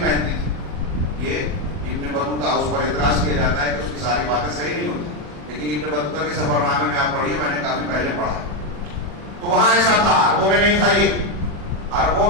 پہنتی تھی. یہ ابن بطوطہ, اس پر اعتراض کیا جاتا ہے کہ اس کی ساری باتیں صحیح نہیں ہوتی, لیکن ابن بطوطہ کے سفر نامے میں آپ پڑھیے, میں نے کافی پہلے پڑھا ہے. تو وہاں ایسا تھا, عربوں میں نہیں تھا. یہ عربوں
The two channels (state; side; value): late; left; 40 ms